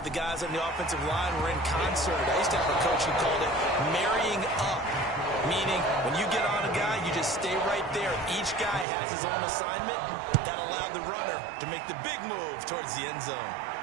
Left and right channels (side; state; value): left; drops out; at 8.8 s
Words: the guys on the offensive line were in concert. I used to have a coach who called it marrying up. meaning when you get on a guy, you just stay right there. Each guy has his own assignment. That allowed the runner to make the big move towards the end zone.